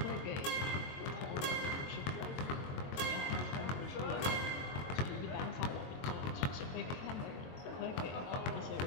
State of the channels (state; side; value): late; right; 22 ms